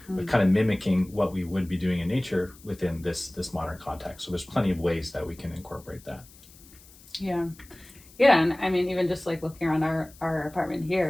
but kind of mimicking what we would be doing in nature within this modern context. So there's plenty of ways that we can incorporate that. Yeah. Yeah, and I mean, even just like looking around our apartment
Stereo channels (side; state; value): left; noise; hiss, 23 dB below the sound